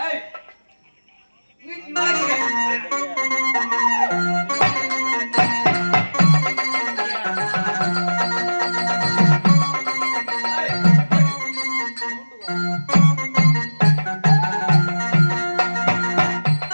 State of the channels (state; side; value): inverted; both; correlation -1.00